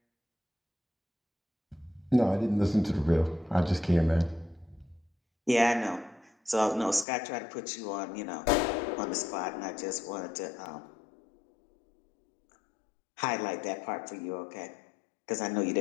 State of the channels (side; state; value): right; drops out; at 7.1 s